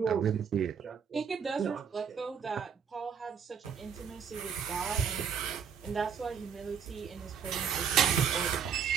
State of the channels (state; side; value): quieter; left; 7.1 dB